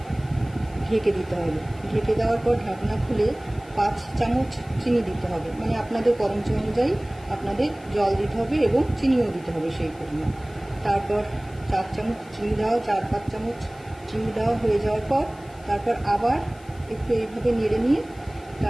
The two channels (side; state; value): left; noise; hiss, 26 dB below the sound